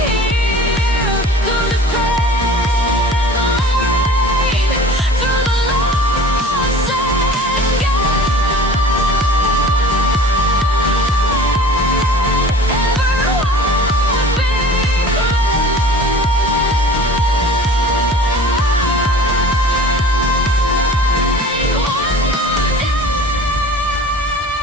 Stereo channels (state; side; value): normal; both; correlation 0.43